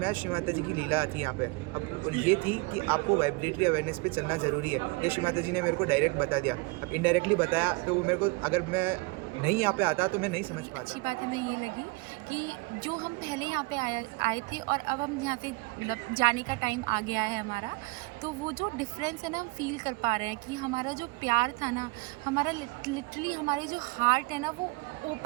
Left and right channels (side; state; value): left; quieter; 27.4 dB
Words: आया श्री माता जी की लीला आती है यहाँ पे. अब ये थी कि आपको वाइब्रेटरी अवेयरनेस पे चलना ज़रूरी है. ये श्री माता जी ने मेरे को डायरेक्ट बता दिया. अब इनडायरेक्टली बताया तो वो मेरे को, अगर मैं नहीं यहाँ पे आता तो मैं नहीं समझ पाता. अच्छी बात हमें ये लगी कि जो हम पहले यहाँ पे आए थे और अब हम यहाँ से मतलब जाने का टाइम आ गया है हमारा, तो वो जो डिफरेंस है ना हम फील कर पा रहे हैं कि हमारा जो प्यार था ना, हमारा लिटरली हमारे जो हार्ट है ना वो